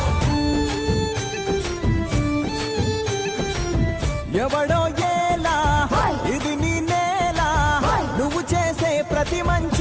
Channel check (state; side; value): identical; both; correlation 1.00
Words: ఎవడో ఏలా ఇది నీ నేల నువ్వు చేసే ప్రతి